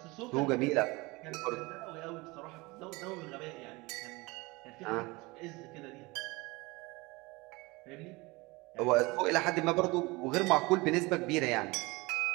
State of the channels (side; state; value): left; quieter; 23.7 dB